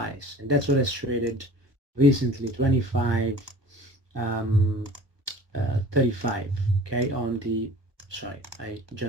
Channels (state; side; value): late; left; 1.3 ms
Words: and that's what has traded recently, 25 35. Okay, on the sorry, I